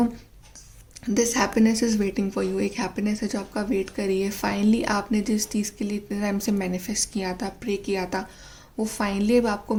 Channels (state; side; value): identical; both; correlation 1.00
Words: this happiness is waiting for you. एक हैप्पीनेस है जो आपका वेट कर रही है. फाइनली आपने जिस चीज़ के लिए इतने टाइम से मैनिफेस्ट किया था, प्रे किया था, वो फाइनली अब आपको